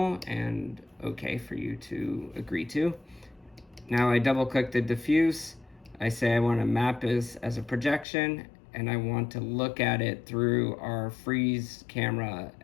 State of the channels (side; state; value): right; drops out; at 8.1 s